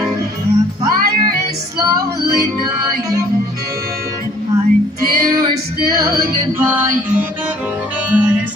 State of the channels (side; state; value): both; normal; correlation 0.57